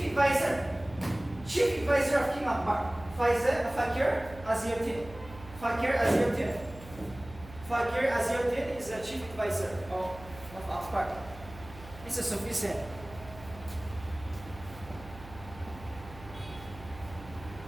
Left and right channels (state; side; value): noise; right; hum, 17 dB below the sound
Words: advisor of King Akbar. Fakir Aziuddin. Fakir Aziuddin is a chief advisor of Akbar. It's a Sufism.